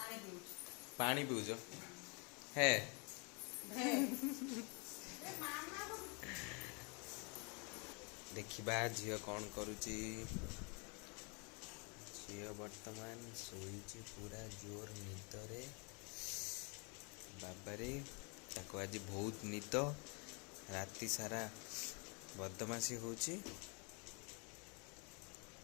पानी पीऊच है देखिबा झियो कौन करुची झियो वर्तमान सोईची पूरा जोर निदरे बाबारे ताको आज बहुत निद राति सारा बदमाशी होची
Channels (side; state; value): right; quieter; 33.4 dB